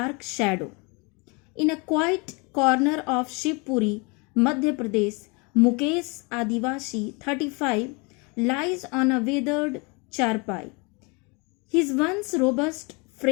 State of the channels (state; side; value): quieter; right; 29.8 dB